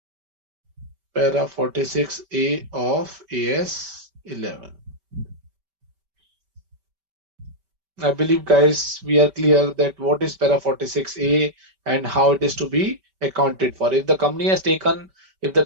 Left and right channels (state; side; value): late; left; 5.2 ms